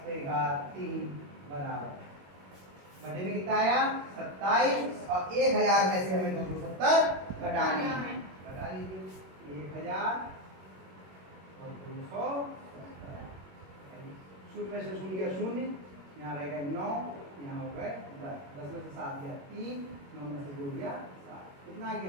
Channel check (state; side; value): late; left; 21 ms